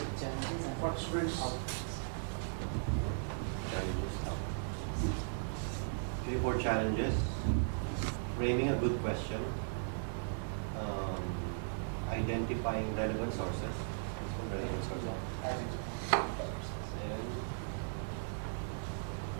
what students. Three, four challenges. Framing a good question. Identifying relevant sources. And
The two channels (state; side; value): silent; left; digital silence